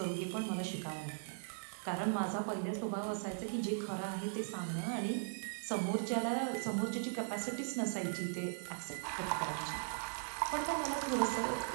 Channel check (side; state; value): left; silent; digital silence